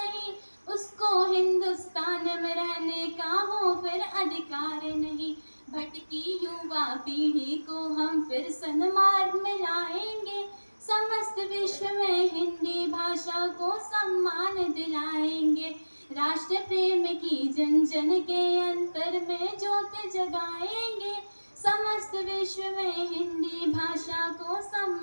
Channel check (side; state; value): both; inverted; correlation -1.00